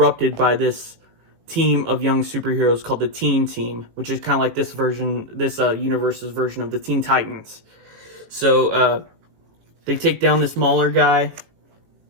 by this team of young superheroes called the Teen Team, which is kind of like this universe's version of the Teen Titans. So they take down this Mahler guy.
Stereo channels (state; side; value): late; left; 18 ms